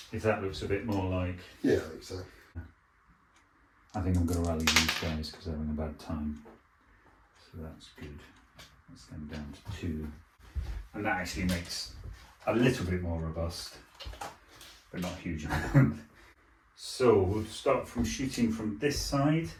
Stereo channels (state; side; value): identical; both; correlation 1.00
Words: If that looks a bit more like... Yeah, I think so. I think I'm going to rally these guys because they're having a bad time. So that's good. That's them down to 2. And that actually makes a little bit more robust, but not a huge amount. So we'll start from shooting from this side.